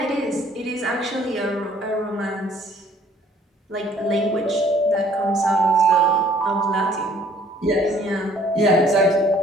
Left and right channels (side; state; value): both; normal; correlation 0.58